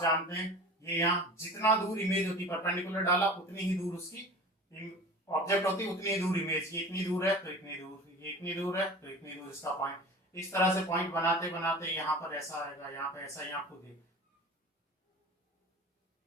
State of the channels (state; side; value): normal; both; correlation 0.37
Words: जानते हैं, ये यहाँ जितना दूर इमेज होती है, परपेंडिकुलर डाला उतनी ही दूर उसकी ऑब्जेक्ट होती है, उतनी ही दूर इमेज। ये इतनी दूर है तो इतनी दूर, ये इतनी दूर है तो इतनी दूर इसका पॉइंट। इस तरह से पॉइंट बनाते बनाते यहाँ पर ऐसा आएगा, यहाँ पे ऐसा, यहाँ खुद है,